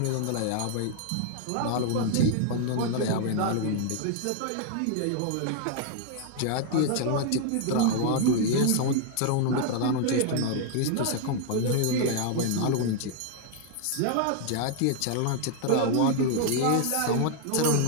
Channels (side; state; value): both; different; correlation 0.00